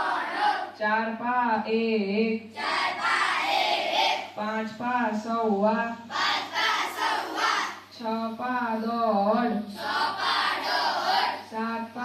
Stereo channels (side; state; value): both; identical; correlation 1.00